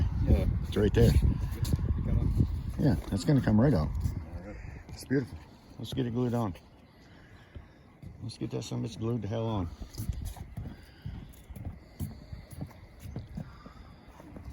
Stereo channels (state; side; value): identical; both; correlation 1.00